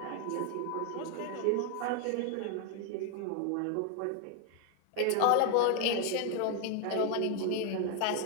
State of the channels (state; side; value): different; both; correlation 0.00